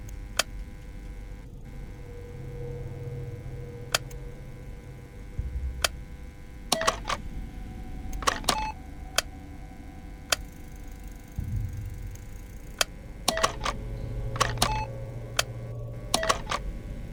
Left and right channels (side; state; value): both; identical; correlation 1.00